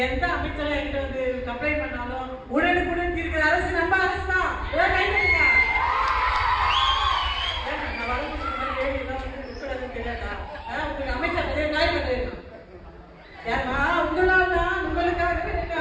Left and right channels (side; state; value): both; identical; correlation 1.00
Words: எந்த அமைச்சரை என்கிட்ட வந்து கம்ப்ளைண்ட் பண்ணாலும் உடனுக்குடன் இருக்கிற அரசு நம்ம அரசு தான். தெரியாதா? உங்களுக்கு அமைச்சர் காய் பண்ணுறேன். ஏன்னா உங்களால் தான் உங்களுக்காகவே